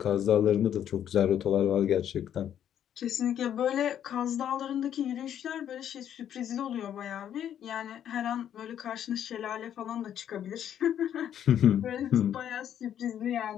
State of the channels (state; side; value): quieter; right; 10.0 dB